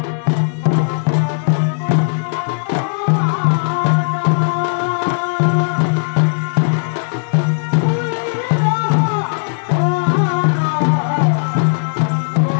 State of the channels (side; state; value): right; silent; digital silence